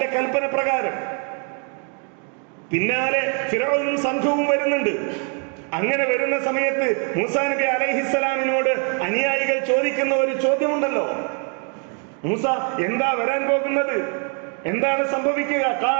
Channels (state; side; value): quieter; left; 40.0 dB